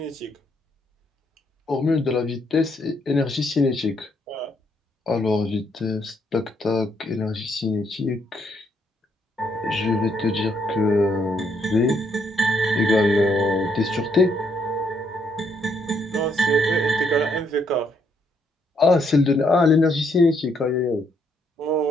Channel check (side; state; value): both; normal; correlation 0.73